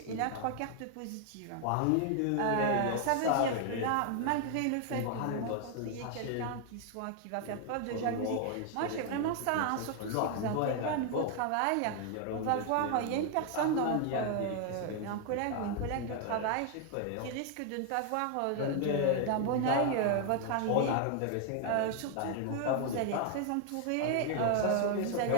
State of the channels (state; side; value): different; both; correlation 0.00